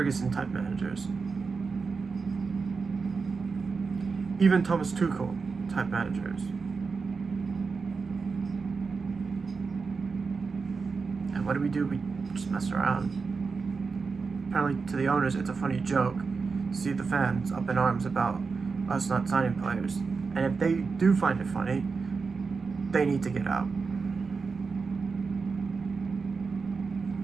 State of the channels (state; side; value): quieter; left; 4.8 dB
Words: type managers. Even Thomas Tuchel type managers. And what do? We just mess around. Apparently to the owners it's a funny joke to see the fans up in arms about us not signing players. And if they do find it funny, they need to get out.